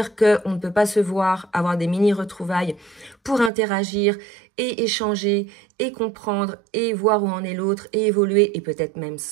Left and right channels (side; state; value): left; drops out; at 3.5 s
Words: qu'on ne peut pas se voir, avoir des mini-retrouvailles pour interagir et échanger et comprendre et voir où en est l'autre et évoluer et peut-être même